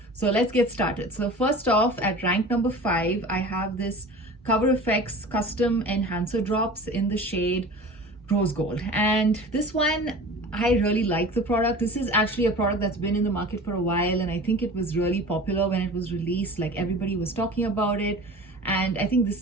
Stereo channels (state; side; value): normal; both; correlation 0.38